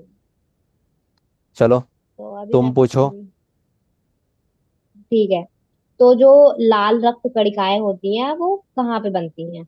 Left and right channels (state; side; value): identical; both; correlation 1.00